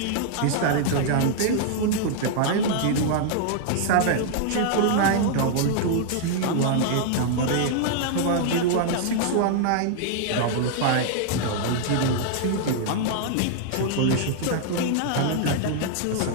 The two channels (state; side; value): different; both; correlation -0.01